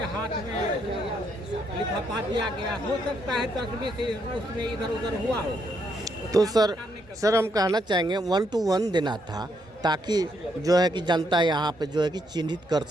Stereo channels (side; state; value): both; normal; correlation 0.75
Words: हाथ में लिफाफा दिया गया। हो सकता है 10-20 उसमें इधर उधर हुआ हो। तो सर हम कहना चाहेंगे 1 to 1 देना था, ताकि जो है कि जनता यहाँ पे जो है कि चिन्हित कर